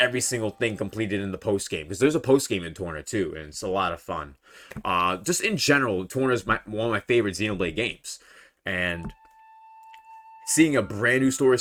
single thing completed in the post game, because there's a post game in Torna too, and it's a lot of fun. Just in general, Torna is one of my favorite Xenoblade games, and seeing a brand new story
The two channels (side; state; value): both; identical; correlation 1.00